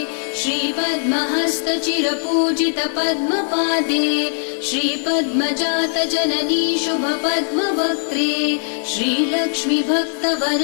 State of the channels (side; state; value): right; silent; digital silence